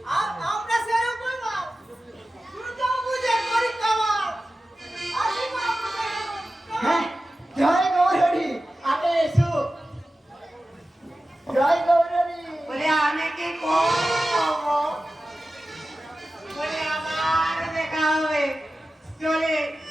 আমরা সেরকম না দুর্গা পূজা করি কামাল আসি মা হ্যাঁ, জয় গৌরহরি, আগে এসো। জয় গৌরহরি। বলে আমি কি করব? বলে আবার দেখা হবে, চলে।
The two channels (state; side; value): normal; both; correlation 0.94